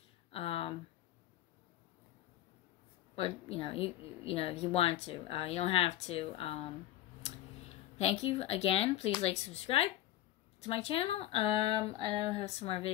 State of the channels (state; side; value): quieter; right; 13.9 dB